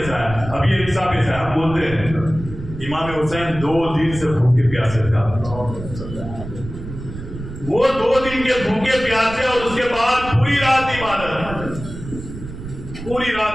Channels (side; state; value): right; noise; rumble, 11 dB below the sound